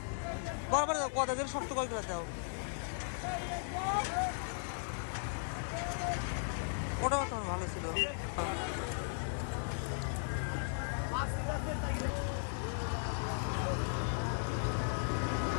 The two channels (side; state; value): right; silent; digital silence